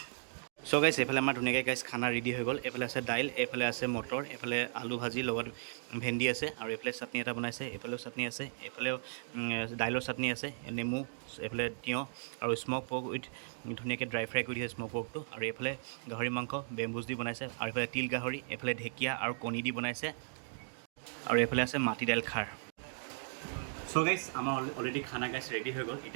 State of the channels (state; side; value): silent; left; digital silence